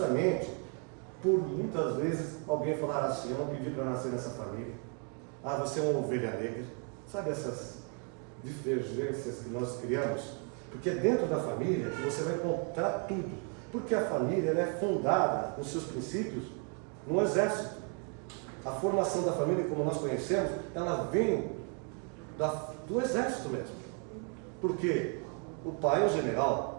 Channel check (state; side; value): quieter; left; 39.8 dB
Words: por muitas vezes alguém falar assim: eu não pedi para nascer nessa família. Ah, você é uma ovelha negra. Sabe essas divergências que nós criamos? Porque é dentro da família que você vai encontrar tudo. Porque a família ela é fundada, nos seus princípios, no exército. A formação da família, como nós conhecemos, ela vem do exército mesmo. Porque o pai é o